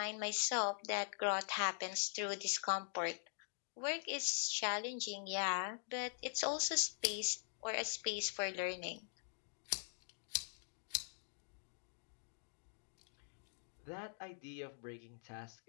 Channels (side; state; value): right; silent; digital silence